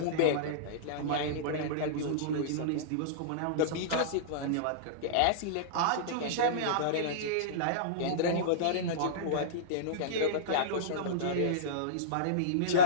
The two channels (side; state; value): both; different; correlation -0.04